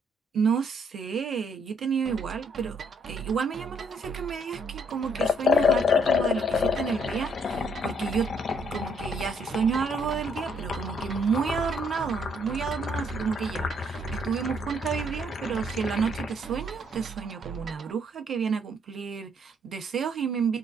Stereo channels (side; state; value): both; normal; correlation 0.70